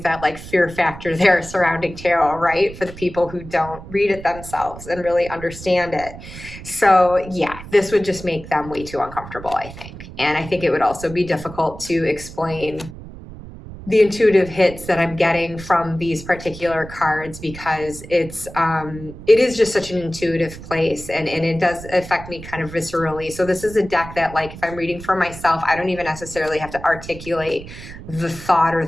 that like fear factor there surrounding tarot, right? For the people who don't read it themselves and really understand it. So yeah, this would just make them way too uncomfortable, I think. And I think it would also be difficult to explain the intuitive hits that I'm getting from these particular cards, because it is just such an intuitive place, and it does affect me kind of viscerally. So this is a deck that, like, if I'm reading for myself, I don't even necessarily have to articulate the thought or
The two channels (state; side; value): noise; right; rumble, 14 dB below the sound